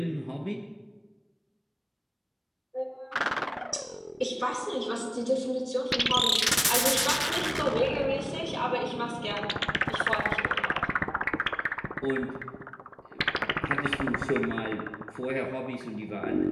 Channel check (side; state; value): both; identical; correlation 1.00